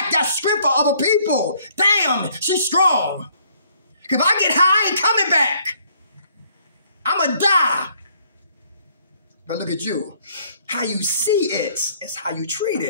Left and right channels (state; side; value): inverted; both; correlation -0.63